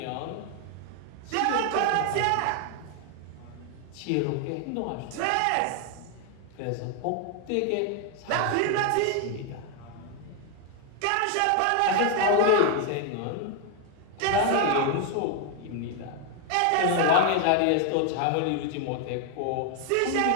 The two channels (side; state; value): both; different; correlation 0.01